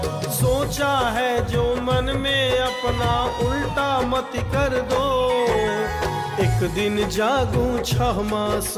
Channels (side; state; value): both; identical; correlation 1.00